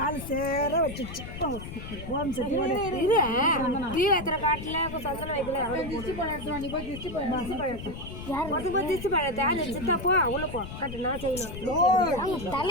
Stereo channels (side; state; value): left; noise; rumble, 10 dB below the sound